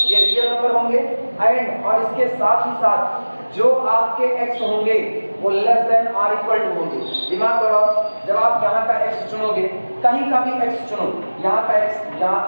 ये रियल नंबर होंगे। एंड और इसके साथ ही साथ जो आपके x होंगे वो less than or equal to होंगे। दिमाग लगाओ, जब आप यहाँ का x चुनोगे, कहीं का भी x चुनो, यहाँ का x, यहाँ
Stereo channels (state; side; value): inverted; both; correlation -1.00